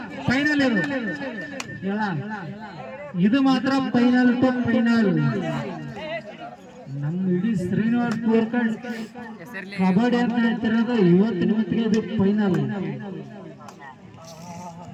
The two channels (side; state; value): both; identical; correlation 1.00